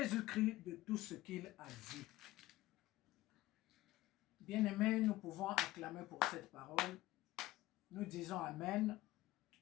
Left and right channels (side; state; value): right; quieter; 17.1 dB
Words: de tout ce qu'il a vu. Bien-aimés, nous pouvons acclamer pour cette parole. Nous disons Amen.